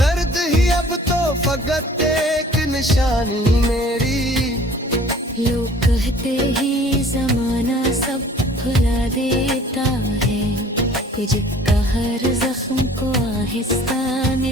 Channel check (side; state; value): both; normal; correlation 0.51